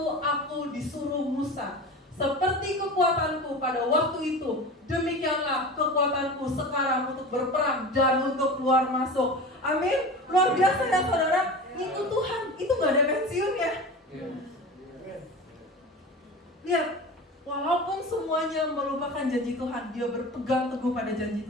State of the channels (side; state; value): both; normal; correlation 0.32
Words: aku disuruh Musa. Seperti kekuatanku pada waktu itu, demikianlah kekuatanku sekarang untuk berperang dan untuk keluar masuk. Amin. Luar biasa ya saudara. Itu Tuhan, itu gak ada pensiun ya. Lihat, walaupun semuanya melupakan janji Tuhan, dia berpegang teguh pada janji